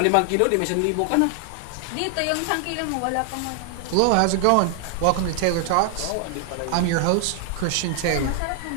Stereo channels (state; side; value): different; both; correlation 0.00